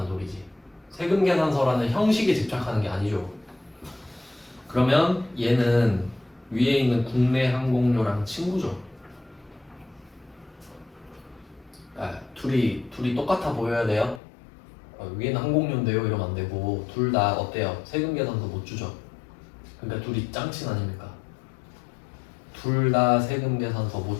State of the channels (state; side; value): drops out; right; at 14.2 s